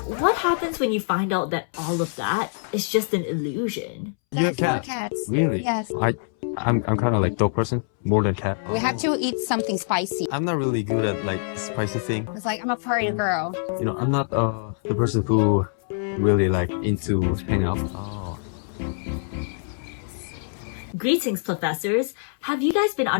what happens when you find out that all of that is just an illusion? You have cats? Cats. Really? Yes. I'm kind of like dog person more than cat. We have to eat something spicy. I'm not really good at like spicy thing. It's like I'm a party girl. You know, I'm not the person who really like into hang out. Oh. Greetings, Plofessors! Have you guys been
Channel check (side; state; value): right; silent; 62 dB below the other